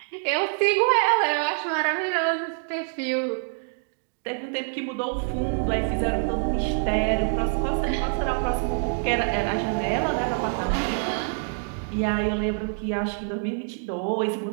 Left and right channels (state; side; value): silent; left; 58 dB below the other